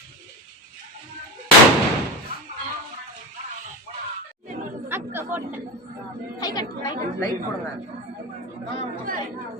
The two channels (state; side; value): normal; both; correlation 0.20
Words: அக்கா போட்டேன். கை கட்டு லைட் போடுங்க.